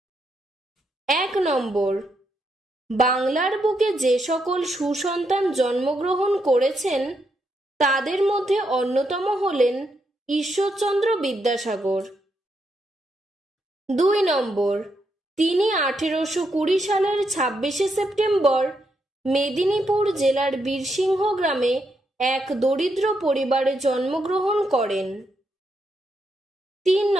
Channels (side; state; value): both; normal; correlation 0.80